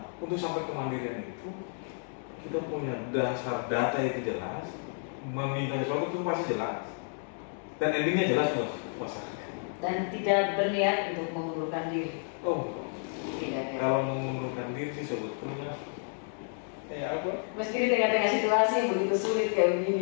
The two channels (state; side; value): silent; right; 57 dB below the other